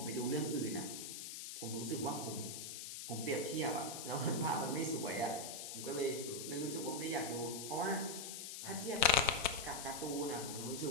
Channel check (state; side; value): noise; left; hiss, 7 dB below the sound